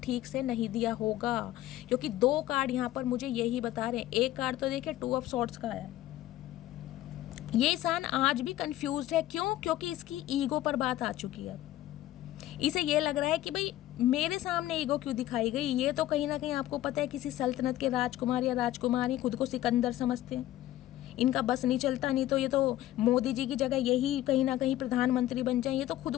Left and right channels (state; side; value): quieter; right; 14.2 dB